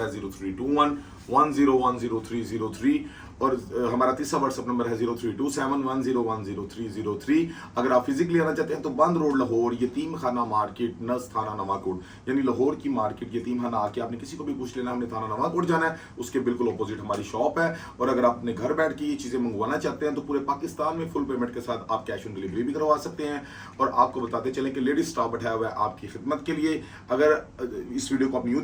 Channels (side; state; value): both; identical; correlation 1.00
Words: है 032110100303 और हमारा तीसरा व्हाट्सएप नंबर है 032710100303। अगर आप फिजिकली आना चाहते हैं तो बंद रोड लाहौर, यतीम खाना मार्केट, नस थाना नवाकोट, यानी लाहौर की मार्केट यतीम खाना आके आपने किसी को भी पूछ लेना, हमने थाना नवाकोट जाना है, उसके बिल्कुल अपोजिट हमारी शॉप है। और अगर आप अपने घर बैठ के ये चीज़ें मंगवाना चाहते हैं तो पूरे पाकिस्तान में फुल पेमेंट के साथ आप कैश ऑन डिलीवरी भी करवा सकते हैं। और आपको बताते चलें कि लेडीज स्टाफ बैठाया हुआ है आपकी खिदमत के लिए। अगर इस वीडियो को आप न्यू